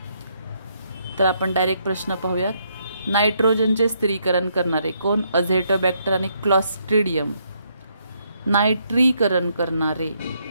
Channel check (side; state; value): both; inverted; correlation -0.74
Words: तर आपण डायरेक्ट प्रश्न पाहूयात. नायट्रोजनचे स्थिरीकरण करणारे कोण? अझेटोबॅक्टर आणि क्लॉस्ट्रिडियम. नायट्रीकरण करणारे,